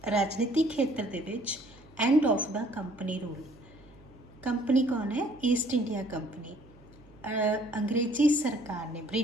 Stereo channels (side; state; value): right; noise; hum, 25 dB below the sound